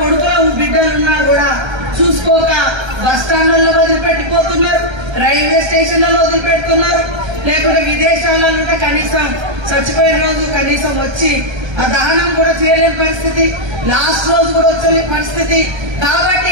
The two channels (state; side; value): late; left; 1.3 ms